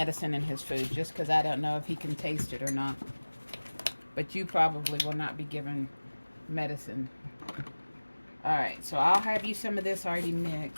in his food, just because I don't know if he can taste it or not. But you probably will not be given medicine. Alright, so I'll have you some of this already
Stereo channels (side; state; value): both; inverted; correlation -1.00